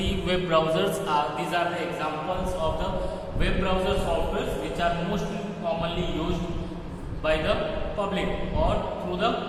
web browsers are the examples of the web browser softwares which are most commonly used by the public or through the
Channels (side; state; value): both; identical; correlation 1.00